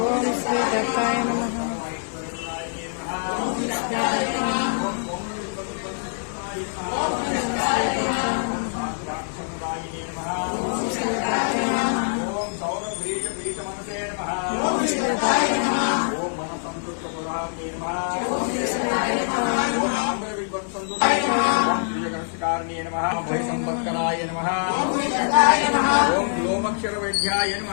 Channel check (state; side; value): silent; right; digital silence